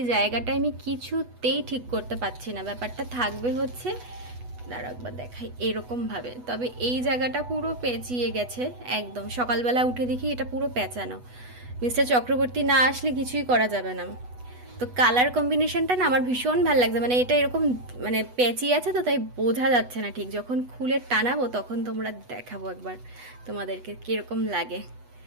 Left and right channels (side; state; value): left; late; 8.1 ms